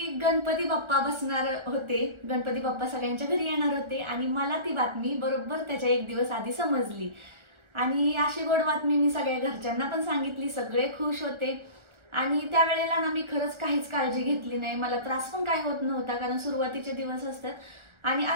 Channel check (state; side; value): late; left; 1.4 ms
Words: गणपती बाप्पा बसणार होते, गणपती बाप्पा सगळ्यांच्या घरी येणार होते आणि मला ती बातमी बरोबर त्याच्या 1 दिवस आधी समजली। आणि अशी गोड बातमी मी सगळ्या घरच्यांना पण सांगितली, सगळे खुश होते। आणि त्यावेळेला ना मी खरंच काहीच काळजी घेतली नाही, मला त्रास पण काय होत नव्हता कारण सुरुवातीचे दिवस असतात। आणि